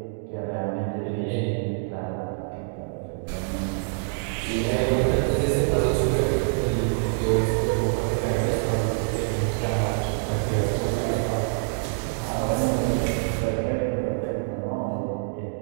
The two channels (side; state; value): left; silent; digital silence